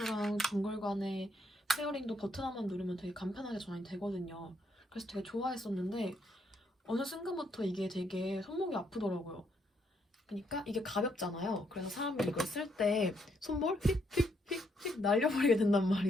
동글 간의 페어링도 버튼 하나만 누르면 되게 간편하게 전환이 되거든요. 그래서 되게 좋아했었는데 어느 순간부터 이게 되게 손목이 아프더라고요. 그러니까 이게 가볍잖아요. 그래서 사람이 이걸 쓸 때 손볼 휙휙휙휙 날려버리게 된단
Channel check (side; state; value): both; normal; correlation 0.74